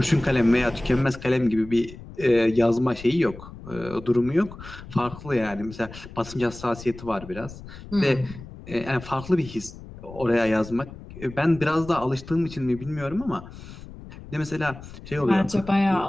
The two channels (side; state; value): left; noise; rumble, 15 dB below the sound